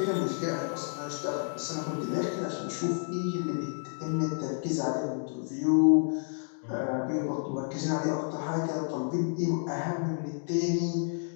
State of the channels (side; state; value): right; silent; digital silence